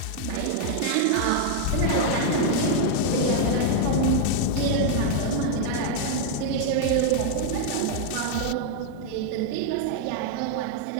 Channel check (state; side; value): different; both; correlation 0.00